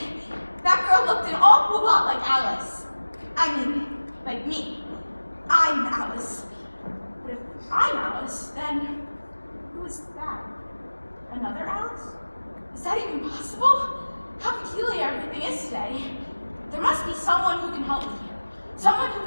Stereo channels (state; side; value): inverted; both; correlation -1.00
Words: That girl looked an awful lot like Alice. I mean, like me. I'm Alice. But if I'm Alice, then who is that? Another Alice? Is that even possible? How peculiar everything is today. There must be someone who can help me here. Someone who